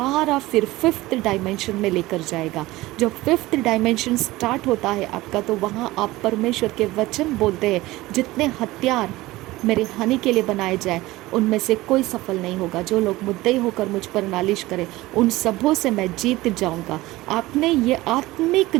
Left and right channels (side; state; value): left; quieter; 18.7 dB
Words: फिर 5th डायमेंशन में लेकर जाएगा। जब 5th डायमेंशन स्टार्ट होता है आपका, तो वहाँ आप परमेश्वर के वचन बोलते हैं, जितने हथियार मेरे हानि के लिए बनाए जाए उनमें से कोई सफल नहीं होगा। जो लोग मुद्दई होकर मुझ पर नालिश करें, उन सबों से मैं जीत जाऊंगा। आपने ये आत्मिक